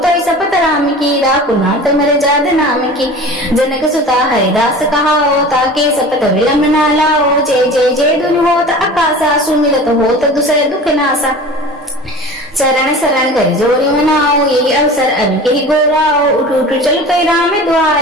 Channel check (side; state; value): both; normal; correlation 0.38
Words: सपत राम की राकुनाथ मर जाद नाम की जनक सुता हरिदास कहाओ ताके सपत विलंब न लाओ जय जय जय दुनि होत आकाशा सुमिरत होत दुसर दुख नासा चरण शरण कर जोरी मनाओ यही अवसर अब के गोराओ उठ उठ चल कई राम